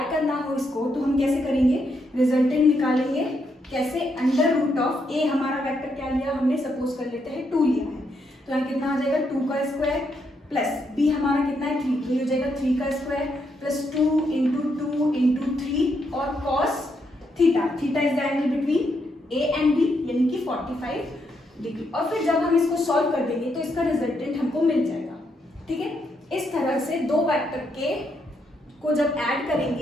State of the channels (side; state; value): both; normal; correlation 0.78